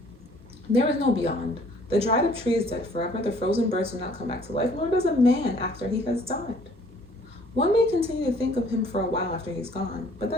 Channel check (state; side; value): normal; both; correlation 0.58